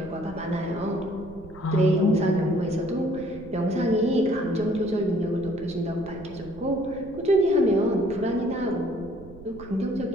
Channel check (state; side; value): noise; right; rumble, 19 dB below the sound